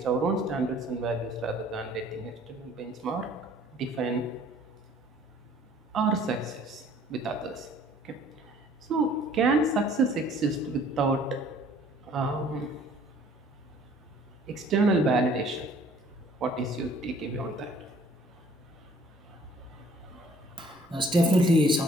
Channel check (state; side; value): normal; both; correlation 0.56